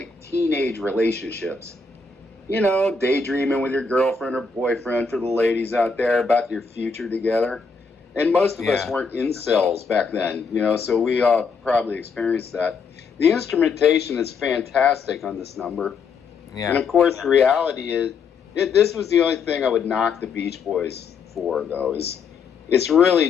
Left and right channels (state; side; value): quieter; right; 5.0 dB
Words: teenage relationships. You know, daydreaming with your girlfriend or boyfriend, for the ladies out there, about your future together. And most of us Yeah. weren't incels back then, you know, so we all probably experienced that. The instrumentation is fantastic on this number. And Yeah. of course, the reality is, this was the only thing I would knock the Beach Boys for, though, is it's